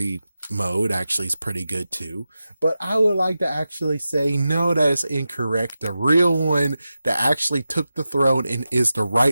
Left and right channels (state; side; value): inverted; both; correlation -0.92